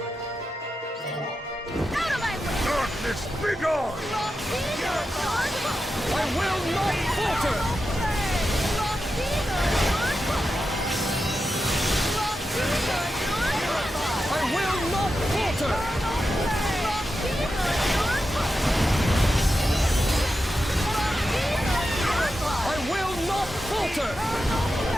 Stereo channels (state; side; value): normal; both; correlation 0.90